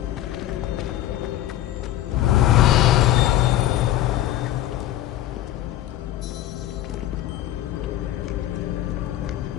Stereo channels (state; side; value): quieter; right; 13.4 dB